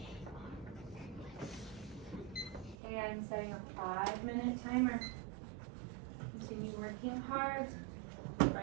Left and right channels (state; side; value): drops out; left; at 2.8 s